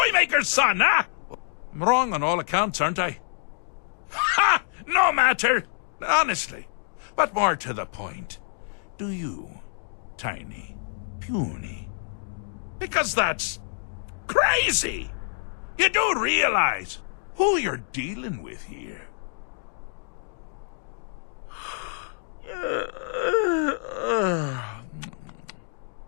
son, huh? I'm wrong on all accounts, aren't I? Ha! No matter. Honestly. But more to the point. Do you, tiny, puny? Because that's crazy. You do realize who you're dealing with here.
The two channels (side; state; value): right; silent; digital silence